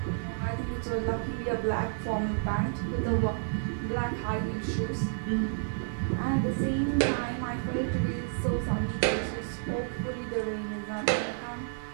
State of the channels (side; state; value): left; silent; digital silence